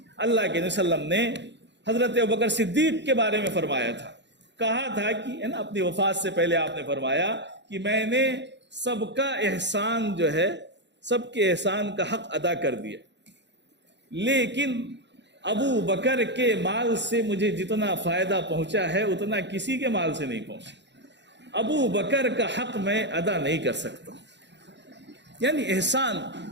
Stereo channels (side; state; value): left; late; 0.52 ms